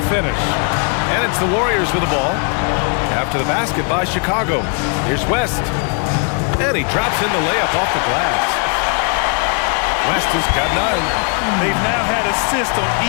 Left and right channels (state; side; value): quieter; right; 39.8 dB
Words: finish. And it's the Warriors with the ball. After the basket by Chicago. Here's West. And he drops in the layup off the glass. West has got 9. They've now had assists on